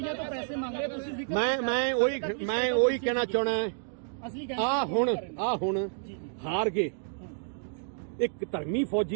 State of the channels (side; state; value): left; silent; digital silence